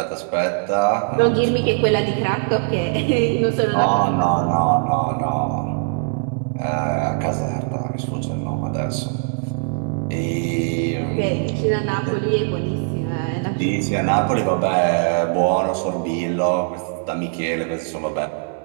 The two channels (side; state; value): left; silent; 65 dB below the other